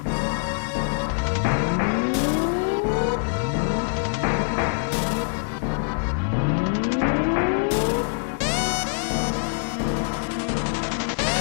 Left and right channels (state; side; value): silent; right; digital silence